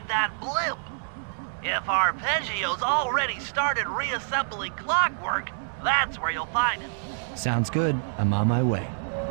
that blimp. If Arpeggio's already started reassembling clockwork, that's where you'll find it. Sounds good. I'm on my way.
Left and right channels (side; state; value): left; silent; digital silence